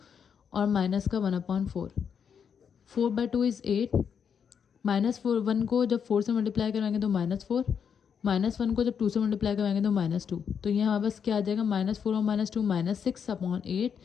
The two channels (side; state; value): right; quieter; 7.2 dB